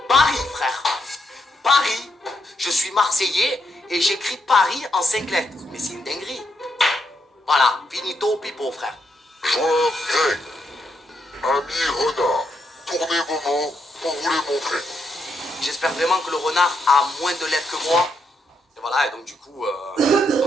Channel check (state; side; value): normal; both; correlation 0.79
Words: Paris, frère. Paris. Je suis Marseillais et j'écris Paris en 5 lettres. Mais c'est une dinguerie. Voilà, finito pipo, frère. Joueur Greg, ami renard, tournez vos mots pour vous les montrer. J'espère vraiment que le renard a moins de lettres que moi. Et voilà, et donc du coup,